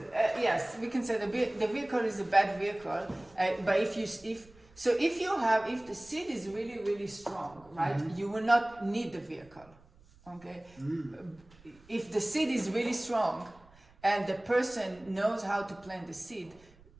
yes. We can say the vehicle is a bad vehicle. But if the seed is really really strong, right? You will not need the vehicle. Okay. If the seed is really strong, and the person knows how to plant the seed,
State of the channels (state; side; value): noise; right; rumble, 26 dB below the sound